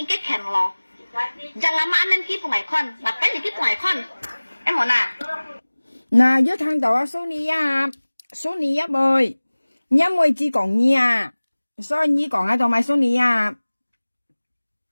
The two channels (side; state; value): both; inverted; correlation -1.00